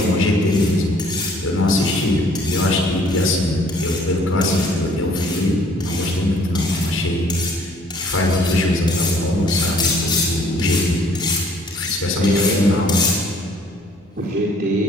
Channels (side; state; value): both; normal; correlation 0.59